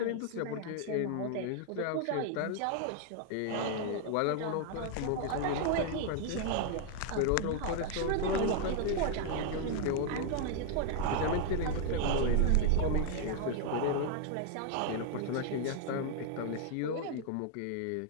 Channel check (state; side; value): different; both; correlation 0.00